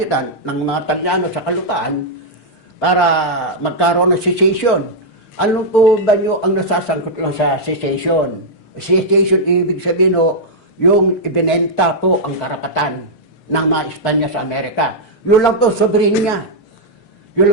ng mga Talyano sa kalupaan para magkaroon ng secession. Ano po ba nyo ang nasasangkot lang sa secession? Secession, ibig sabihin yung ibinenta po ang karapatan ng mga Espanya sa Amerika. Yun lang po, soberenya. Yun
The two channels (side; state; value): right; late; 6.6 ms